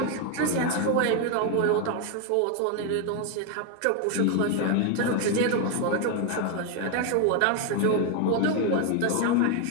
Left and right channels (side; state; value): both; different; correlation 0.01